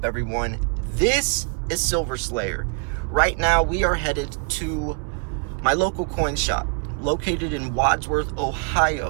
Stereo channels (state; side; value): quieter; left; 37.0 dB